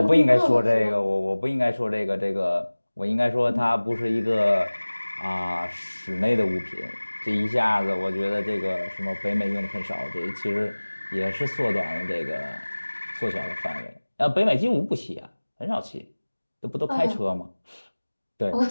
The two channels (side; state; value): both; inverted; correlation -1.00